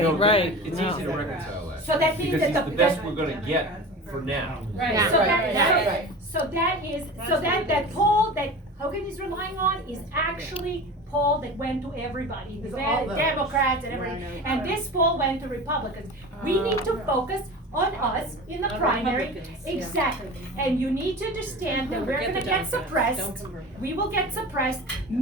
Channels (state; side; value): normal; both; correlation 0.33